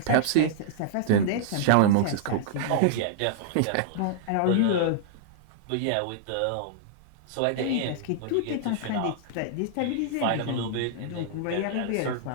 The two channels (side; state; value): both; different; correlation -0.01